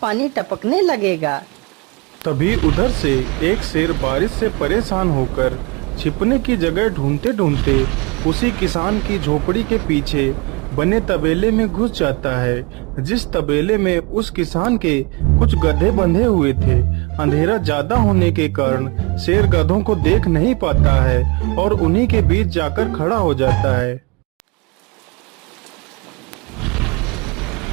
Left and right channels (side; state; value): left; quieter; 27.3 dB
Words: पानी टपकने लगेगा। तभी उधर से एक शेर बारिश से परेशान होकर छिपने की जगह ढूंढते ढूंढते उसी किसान की झोपड़ी के पीछे बने तबेले में घुस जाता है, जिस तबेले में उस किसान के कुछ गधे बंधे हुए थे। अंधेरा ज्यादा होने के कारण शेर गधों को देख नहीं पाता है और उन्हीं के बीच जाकर खड़ा हो जाता है।